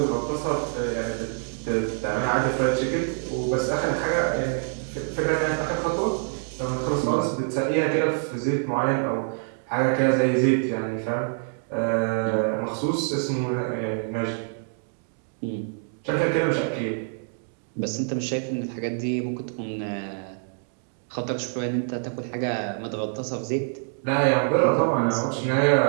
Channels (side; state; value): left; silent; 61 dB below the other